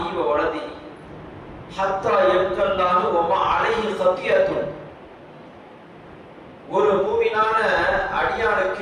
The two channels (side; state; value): both; identical; correlation 1.00